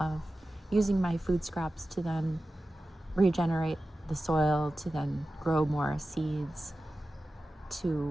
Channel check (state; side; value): normal; both; correlation 0.94